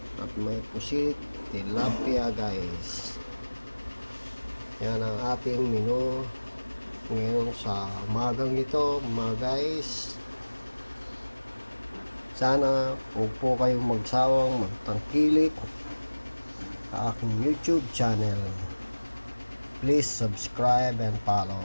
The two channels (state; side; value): inverted; both; correlation -1.00